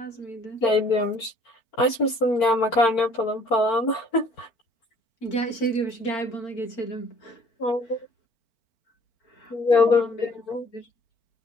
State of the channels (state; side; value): late; right; 4.4 ms